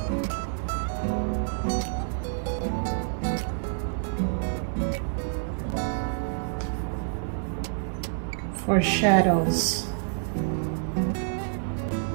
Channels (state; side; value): silent; left; digital silence